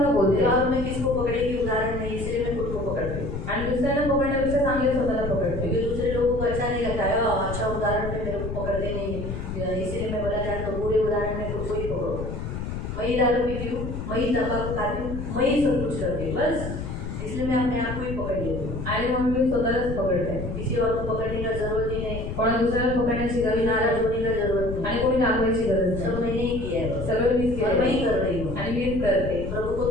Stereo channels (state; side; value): noise; left; rumble, 6 dB below the sound